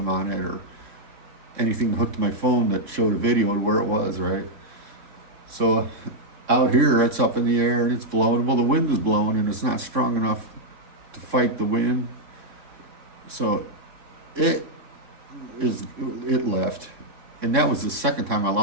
on it or anything hooked to my phone that showed a video of where it was, right? So out here, it's up in the air and it's blowing. Well, the wind is blowing and it's not strong enough to fight the wind. So it left. And that was the second time I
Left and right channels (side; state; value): left; late; 3.6 ms